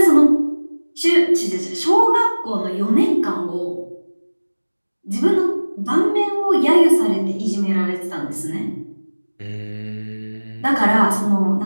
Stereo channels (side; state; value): both; inverted; correlation -1.00